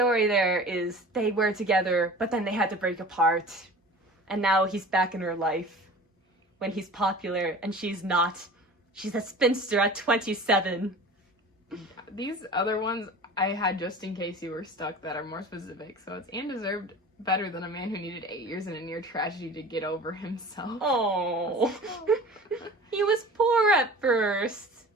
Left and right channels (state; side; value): normal; both; correlation 0.40